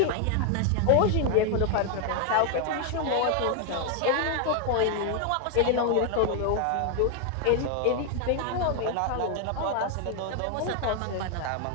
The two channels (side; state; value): both; different; correlation 0.00